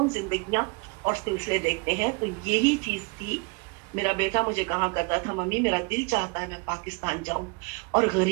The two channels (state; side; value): quieter; left; 30.6 dB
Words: زندگیاں اور سلسلے دیکھتے ہیں۔ تو یہی چیز تھی، میرا بیٹا مجھے کہا کرتا تھا ممی میرا دل چاہتا ہے میں پاکستان جاؤں اور